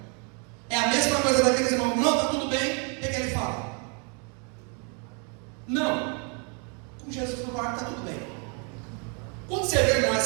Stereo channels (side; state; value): left; quieter; 36.7 dB